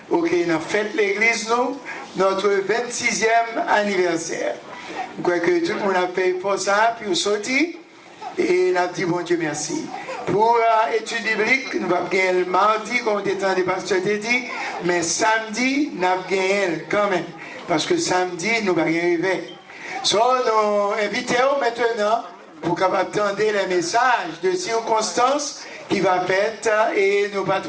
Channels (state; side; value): identical; both; correlation 1.00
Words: ok, nous fête l'église, nous notre 26e anniversaire. Je crois que tout le monde a payé pour ça, puis on sorti, et on a dit bon Dieu merci. Pour l'étude biblique, nous allons gagner le mardi, comme le temps des pasteurs t'a dit, mais samedi, nous allons gagner quand même, parce que samedi, nous allons arriver. So, nous invitons maintenant pour capable entendre les messages de circonstances qui va être et nous pas